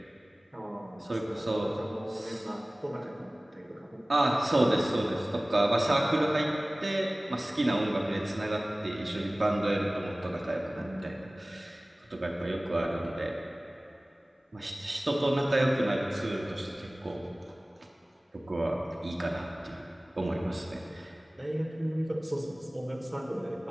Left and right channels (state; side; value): normal; both; correlation 0.98